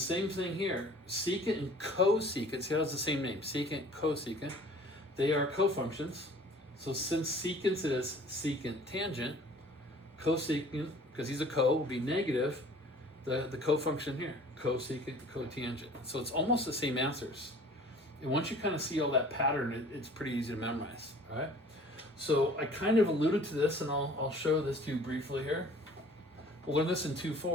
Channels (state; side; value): normal; both; correlation 0.49